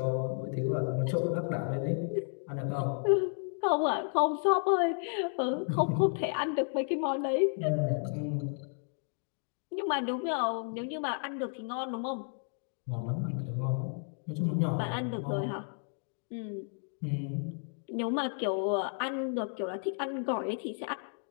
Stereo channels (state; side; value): silent; right; 56 dB below the other